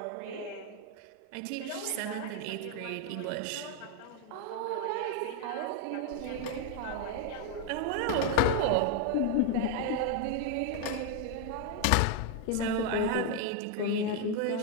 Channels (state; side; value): different; both; correlation 0.01